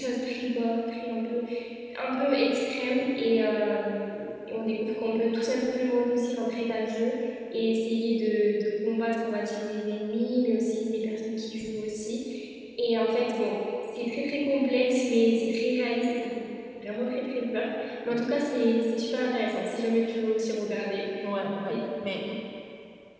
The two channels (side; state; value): both; identical; correlation 1.00